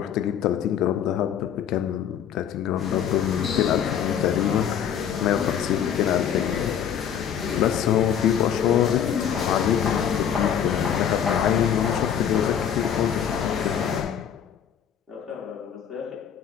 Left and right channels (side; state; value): right; quieter; 8.7 dB